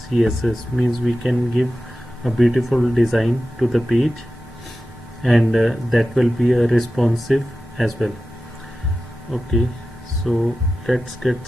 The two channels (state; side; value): normal; both; correlation 0.93